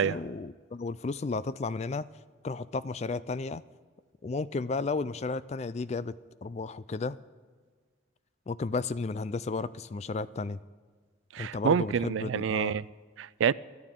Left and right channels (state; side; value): normal; both; correlation 0.16